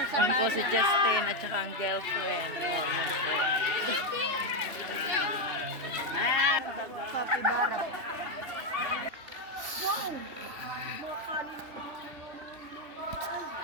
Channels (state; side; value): late; left; 3.5 ms